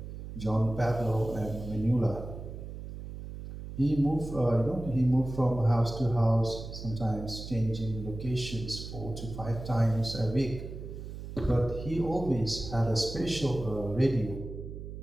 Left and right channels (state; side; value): noise; right; hum, 10 dB below the sound